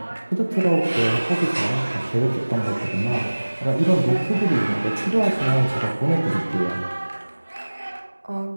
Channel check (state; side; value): inverted; both; correlation -1.00